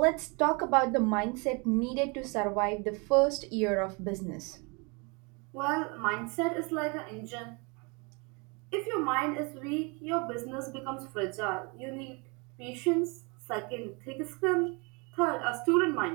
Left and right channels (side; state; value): left; quieter; 30.8 dB